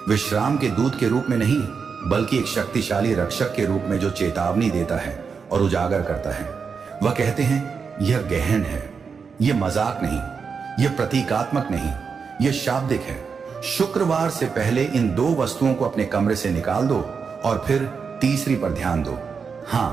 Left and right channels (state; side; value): quieter; left; 5.7 dB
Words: विश्राम के दूत के रूप में नहीं, बल्कि एक शक्तिशाली रक्षक के रूप में जो चेतावनी देता है और उजागर करता है। वह कहते हैं यह गहन है, यह मजाक नहीं, यह प्रतीकात्मक नहीं, यह शाब्दिक है। शुक्रवार से पहले इन 2 वस्तुओं को अपने कमरे से निकाल दो और फिर तीसरी पर ध्यान दो।